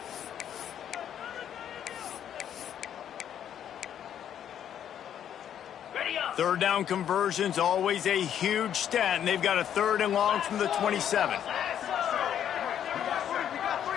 Third down conversions, always a huge stat, and they've got a 3rd and long from the 27.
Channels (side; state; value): right; quieter; 9.7 dB